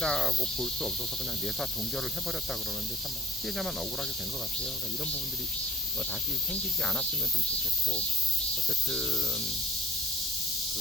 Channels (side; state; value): both; normal; correlation 0.50